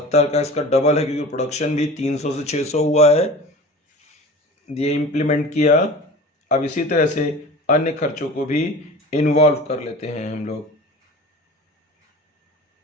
का इसका डबल है, क्योंकि प्रोडक्शन भी 300 से 600 हुआ है, ये इम्प्लीमेंट किया। अब इसी तरह से अन्य खर्चों को भी इन्वॉल्व कर लेते हैं हम लोग।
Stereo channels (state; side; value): normal; both; correlation 0.37